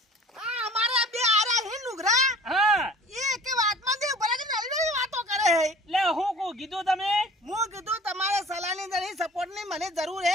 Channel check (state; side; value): normal; both; correlation 0.45